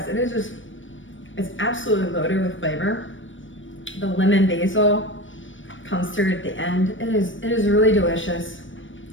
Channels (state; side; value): late; right; 0.56 ms